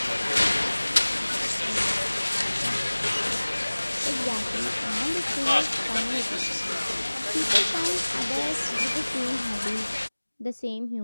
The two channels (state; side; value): inverted; both; correlation -1.00